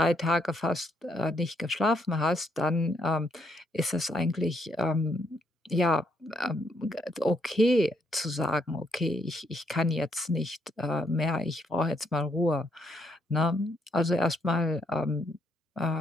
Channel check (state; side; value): normal; both; correlation 0.74